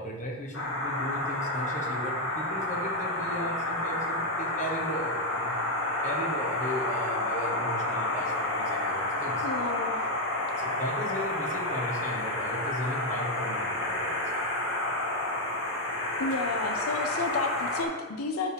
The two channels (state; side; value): normal; both; correlation 0.02